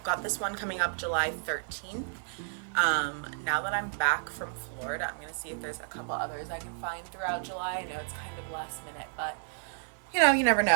got this one coming up July 13th. Now that I'm back from Florida, I'm gonna see if there's a couple others I can find throughout July. I know it's kind of last minute, but you know, you never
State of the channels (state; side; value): silent; left; 55 dB below the other